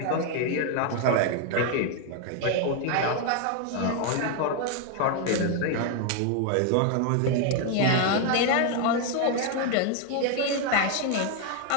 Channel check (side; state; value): both; different; correlation 0.01